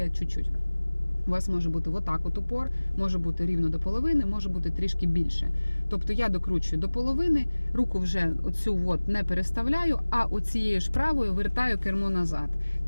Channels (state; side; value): inverted; both; correlation -1.00